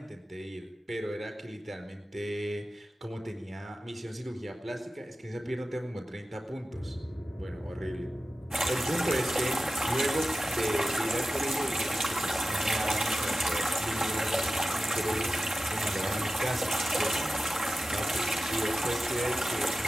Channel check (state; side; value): normal; both; correlation 0.94